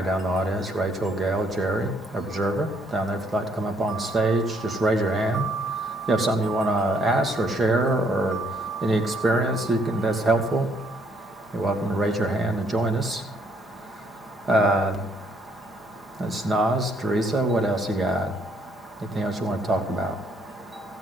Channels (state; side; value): normal; both; correlation 0.69